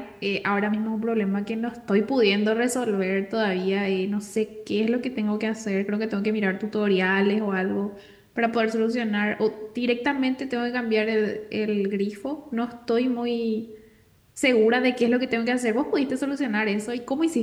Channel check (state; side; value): identical; both; correlation 1.00